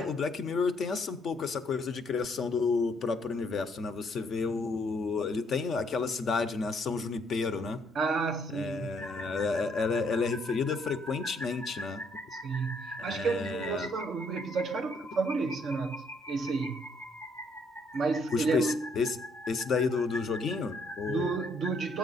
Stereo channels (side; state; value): both; normal; correlation 0.69